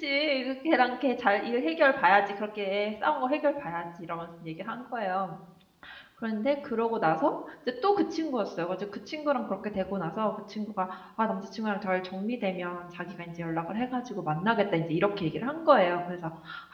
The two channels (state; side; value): identical; both; correlation 1.00